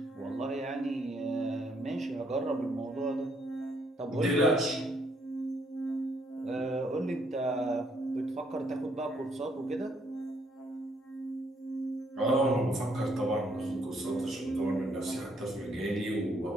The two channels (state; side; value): normal; both; correlation 0.70